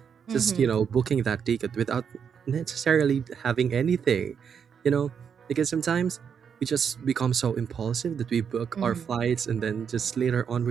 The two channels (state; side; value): quieter; left; 7.2 dB